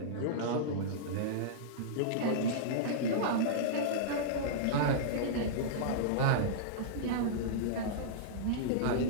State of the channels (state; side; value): different; both; correlation -0.03